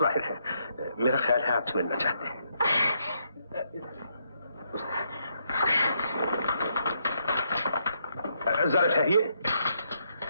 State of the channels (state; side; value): inverted; both; correlation -0.76